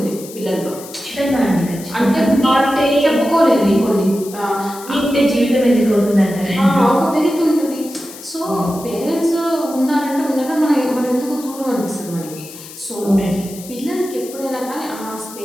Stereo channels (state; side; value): noise; left; hiss, 16 dB below the sound